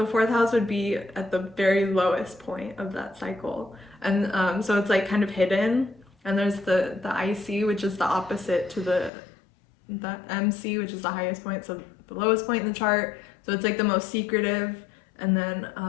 fourth house would be at the very lowest point of that cycle, and so it's like kind of hidden. And there's the IC, which is the opposite to the MC, which is the highest point, so the lowest point in the chart. So it's like the most secretive, and then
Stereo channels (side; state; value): right; drops out; at 9.1 s